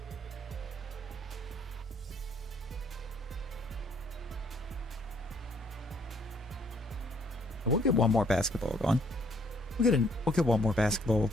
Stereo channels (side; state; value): both; normal; correlation 0.65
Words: We'll get one more basketball going. We'll get one more basketball